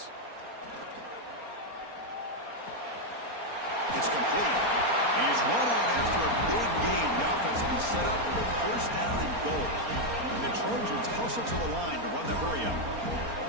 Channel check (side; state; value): left; late; 4.3 ms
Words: It's complete. He's run out after a big gain. The offense will be set up with a 1st down and goal. And the Trojans hustle to the line to run the hurry-up.